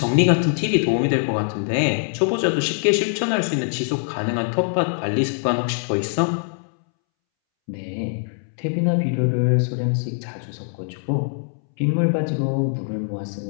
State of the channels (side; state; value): right; silent; 64 dB below the other